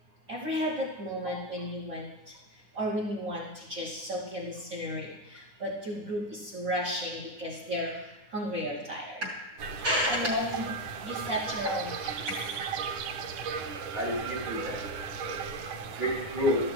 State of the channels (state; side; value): late; left; 9.6 ms